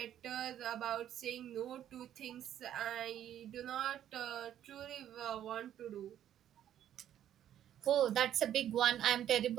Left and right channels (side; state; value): left; quieter; 10.9 dB